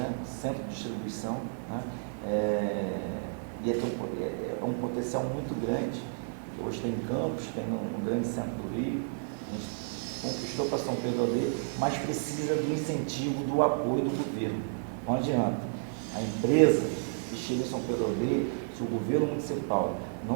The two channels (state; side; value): silent; left; digital silence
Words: Centro de distribuição, né? Ia ter um potencial muito grande. Hoje tem em Campos, tem no grande centro do Rio. A gente conquistou para São Pedro da Aldeia, mas precisa do incentivo, do apoio do governo. Não adianta. A empresa que chega em São Pedro da Aldeia, se o governo municipal